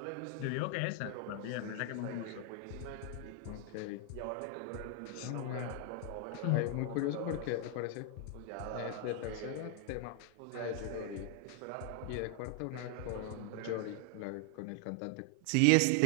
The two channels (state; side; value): different; both; correlation 0.00